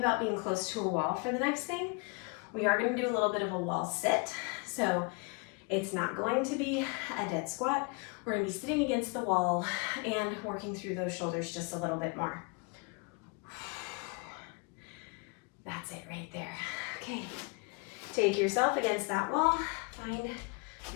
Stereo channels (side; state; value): right; quieter; 32.8 dB